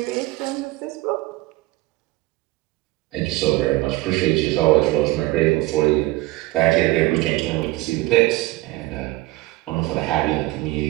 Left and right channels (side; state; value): left; quieter; 19.3 dB